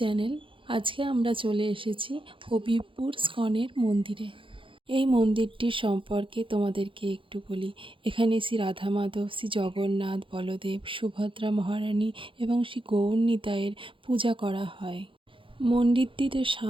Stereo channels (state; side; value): late; left; 0.25 ms